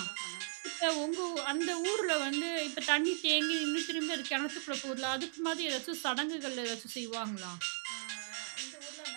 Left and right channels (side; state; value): left; silent; 53 dB below the other